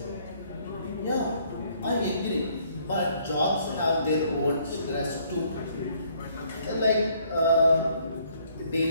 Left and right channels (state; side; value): inverted; both; correlation -0.65